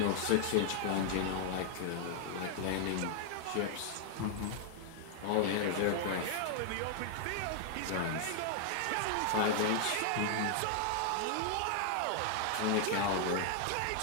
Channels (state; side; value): different; both; correlation 0.00